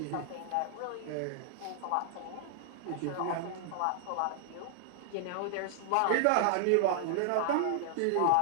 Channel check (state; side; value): different; both; correlation 0.00